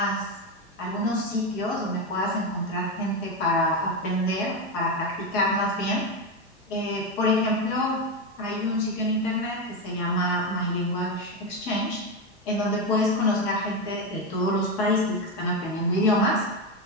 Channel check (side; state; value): both; normal; correlation 0.12